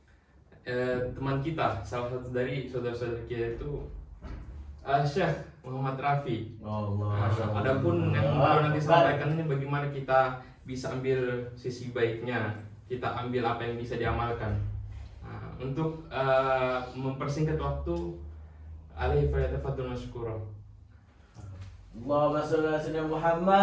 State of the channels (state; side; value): identical; both; correlation 1.00